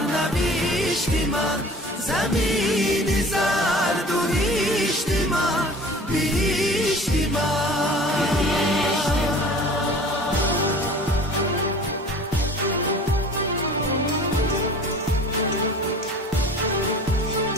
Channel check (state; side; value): normal; both; correlation 0.44